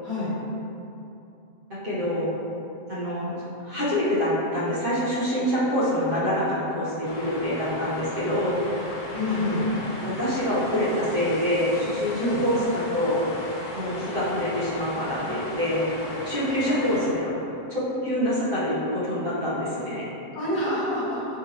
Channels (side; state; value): left; late; 7.5 ms